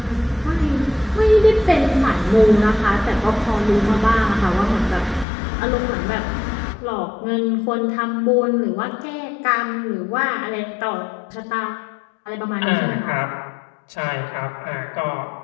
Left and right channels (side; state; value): right; drops out; at 5.2 s